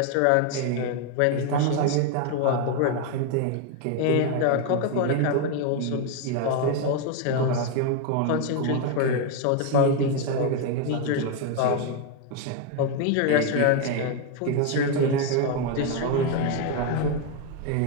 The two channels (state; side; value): different; both; correlation 0.01